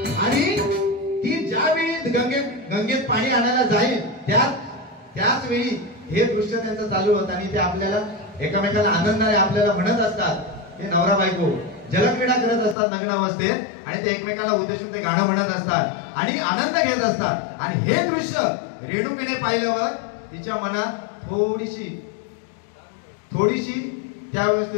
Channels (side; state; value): right; drops out; at 12.8 s